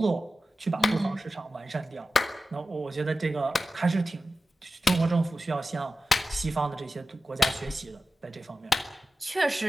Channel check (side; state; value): both; normal; correlation 0.93